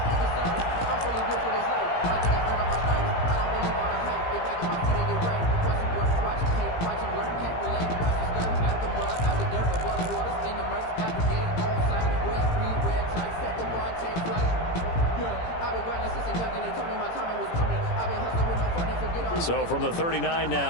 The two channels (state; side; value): late; right; 17 ms